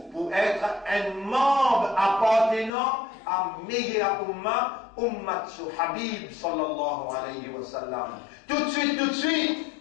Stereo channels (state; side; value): drops out; right; at 2.7 s